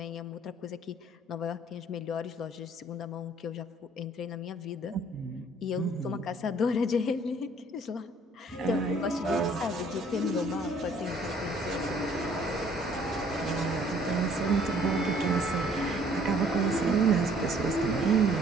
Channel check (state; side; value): normal; both; correlation 0.59